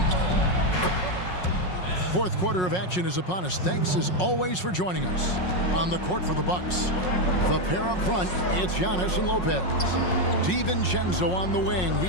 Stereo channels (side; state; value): right; late; 5.5 ms